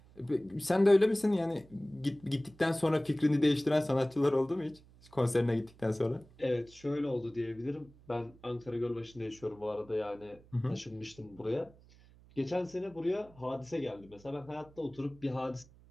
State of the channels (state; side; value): noise; right; hum, 25 dB below the sound